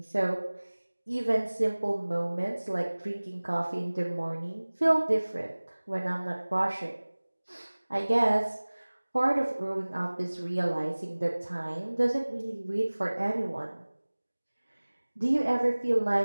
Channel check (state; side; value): inverted; both; correlation -1.00